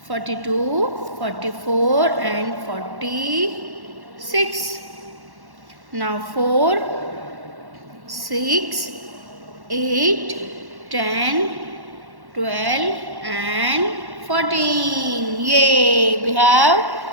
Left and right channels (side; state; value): left; late; 1.1 ms